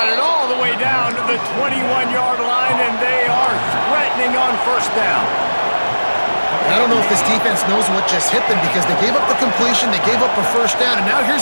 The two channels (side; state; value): both; inverted; correlation -1.00